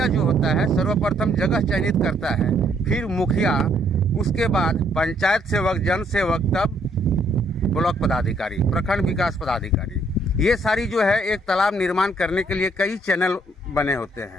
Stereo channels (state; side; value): normal; both; correlation 0.68